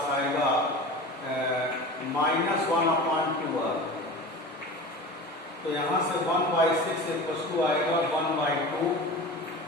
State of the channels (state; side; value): normal; both; correlation 0.34